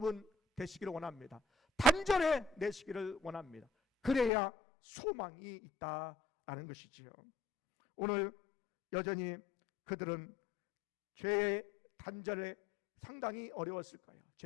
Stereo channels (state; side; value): drops out; right; at 4.3 s